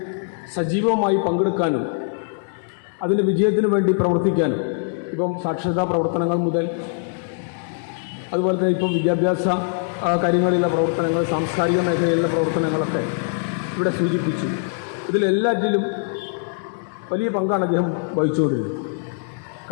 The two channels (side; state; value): right; silent; digital silence